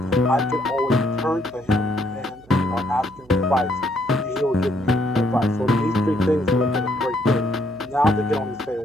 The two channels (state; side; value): noise; right; hum, 26 dB below the sound